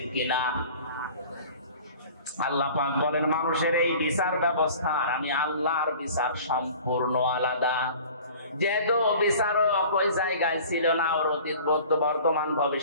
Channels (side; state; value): both; inverted; correlation -0.45